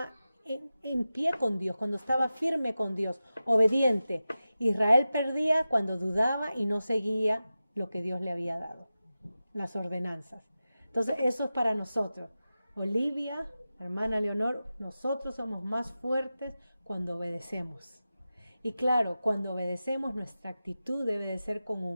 en pie con Dios, cuando estaba firme con Dios, obediente. Israel perdía cuando dudaba y no seguía lo que Dios le había dado, las ordenanzas. Entonces eso es para nosotros. Olivia, hermana Leonor, nosotros somos más fuertes cuando obedecemos. Y claro, cuando obedecemos, nuestra actitud debe de ser con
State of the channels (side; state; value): both; inverted; correlation -0.93